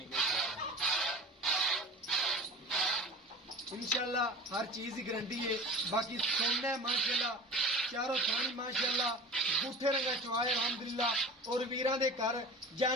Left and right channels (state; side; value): normal; both; correlation 0.37